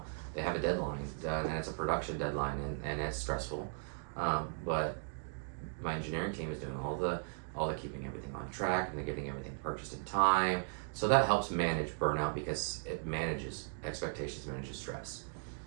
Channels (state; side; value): silent; left; digital silence